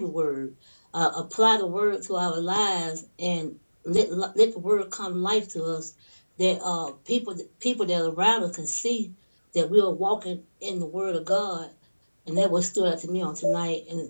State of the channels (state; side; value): inverted; both; correlation -1.00